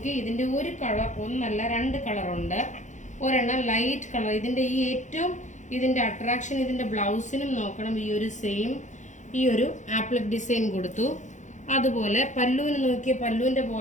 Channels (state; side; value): late; right; 0.35 ms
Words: ഇതിന്റെ ഒരു കളർ, ഒന്നല്ല 2 കളറുണ്ട്. ഒരെണ്ണം ലൈറ്റ് കളർ. ഇതിന്റെ അട്രാക്ഷൻ ഇതിന്റെ ബ്ലൗസിനും നോക്കണം. ഈ ഒരു സെയിം ഈ ഒരു ആപ്ലിക് ഡിസൈൻ കൊടുത്തു. അതുപോലെ പല്ലുവിന് നോക്കിയ പല്ലുവിന്റെ